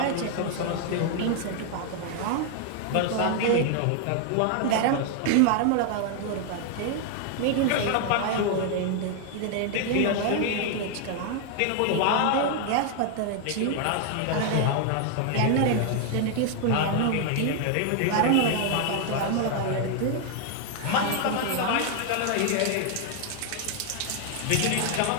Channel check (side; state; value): both; different; correlation 0.00